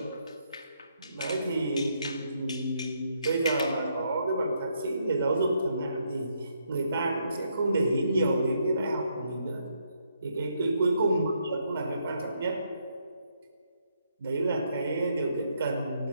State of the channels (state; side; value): inverted; both; correlation -0.75